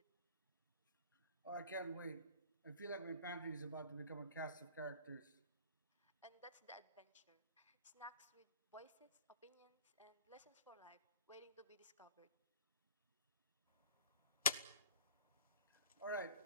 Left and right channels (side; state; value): both; inverted; correlation -0.44